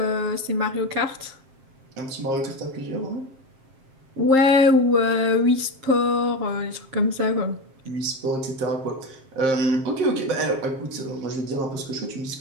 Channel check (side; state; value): left; late; 7.5 ms